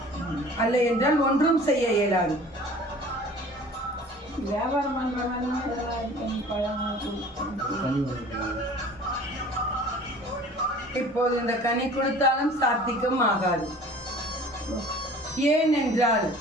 அல்ல என்றால் ஒன்றும் செய்ய இயலாது. இப்போது இந்த கனி கொடுத்தாலும் சாத்திக்கும் ஆகாது. ஏனென்றால்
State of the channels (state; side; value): normal; both; correlation 0.46